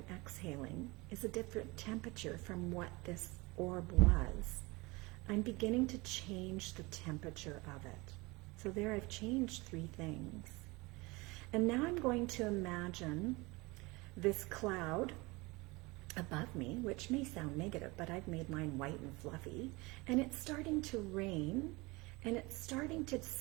exhaling is a different temperature from what this orb was, I'm beginning to change the temperature of it. So there I've changed 3 things. And now I'm going to imagine this cloud above me, which may sound negative, but I've made mine white and fluffy, and it's starting to rain, and it's starting to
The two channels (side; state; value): left; quieter; 24.1 dB